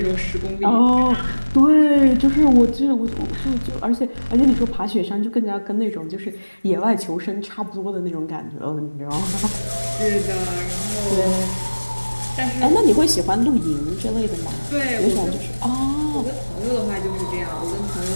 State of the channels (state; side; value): inverted; both; correlation -1.00